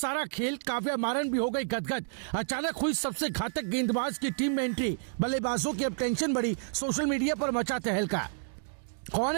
खेल। काव्या मारन भी हो गई गदगद। अचानक हुई सबसे घातक गेंदबाज की टीम में एंट्री। बल्लेबाजों की अब टेंशन बढ़ी। सोशल मीडिया पर मचा तहलका। कौन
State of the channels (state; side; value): silent; left; digital silence